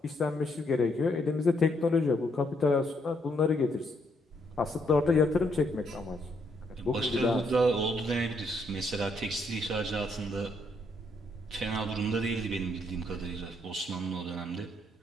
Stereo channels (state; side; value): normal; both; correlation 0.73